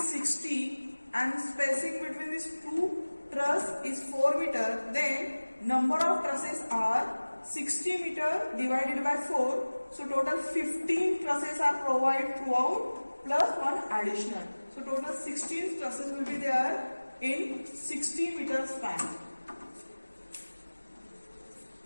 60 and spacing between these 2 truss is 4 meter, then number of trusses are 60 meter divided by 4. So total 15 trusses are provided throughout plus 1 additional. So total 16 trusses will be there in 60 meter span.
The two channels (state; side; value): inverted; both; correlation -1.00